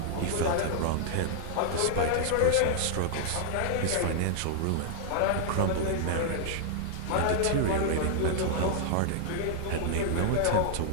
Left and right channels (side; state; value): both; different; correlation -0.01